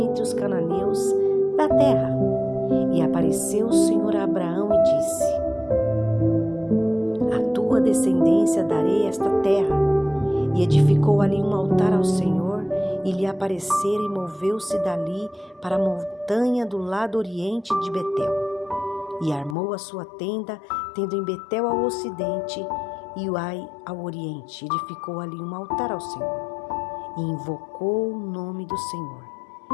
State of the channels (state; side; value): drops out; right; at 19.6 s